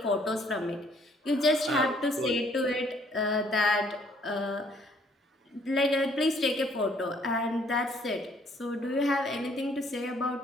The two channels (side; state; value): both; normal; correlation 0.63